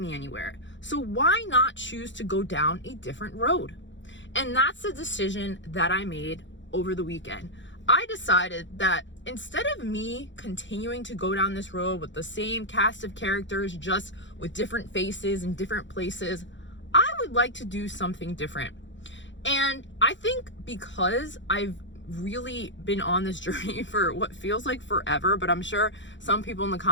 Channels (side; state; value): right; late; 0.54 ms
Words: anywhere. So why not choose to go down a different road? And that's the decision that I made over the weekend. I decided that instead of me continuing to go down this road with the same cast of characters, just with different faces and different places, I would like to do something different. And I think because I've really been on this journey for what feels like forever, but I'm sure some people in the